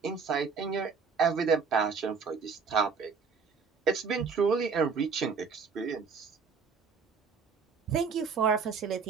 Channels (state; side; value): quieter; left; 5.5 dB